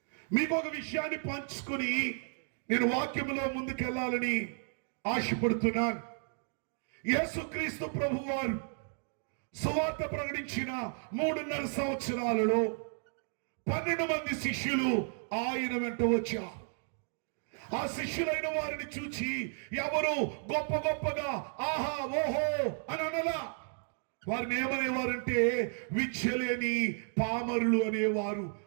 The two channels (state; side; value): silent; left; 56 dB below the other